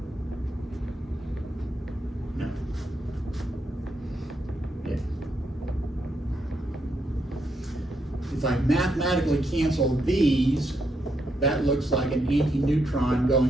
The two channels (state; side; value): normal; both; correlation 0.79